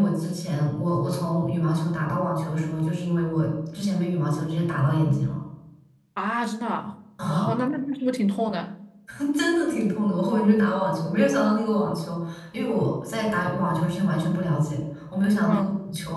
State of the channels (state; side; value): identical; both; correlation 1.00